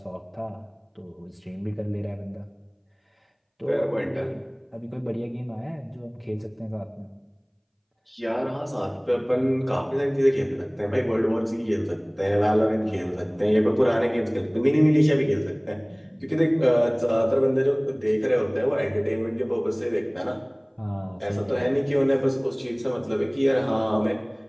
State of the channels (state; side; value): identical; both; correlation 1.00